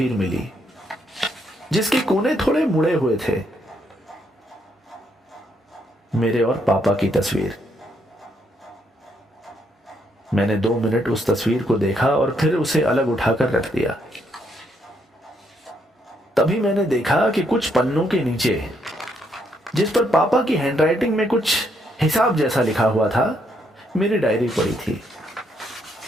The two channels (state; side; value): normal; both; correlation 0.74